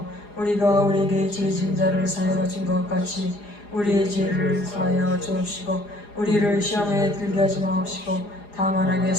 우리가 우리에게 죄진 자를 사하여 준 것 같이 우리의 죄를 사하여 주옵시고 우리를 시험에 들게 하지 마옵시고 다만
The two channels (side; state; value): right; late; 4.9 ms